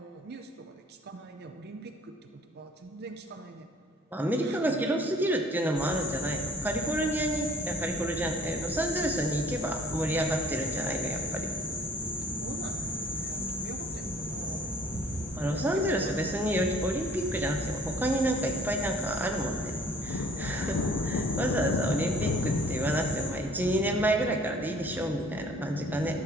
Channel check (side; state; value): both; normal; correlation 0.53